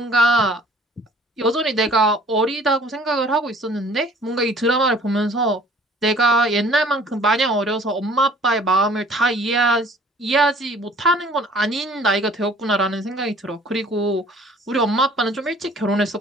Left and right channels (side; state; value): both; normal; correlation 0.53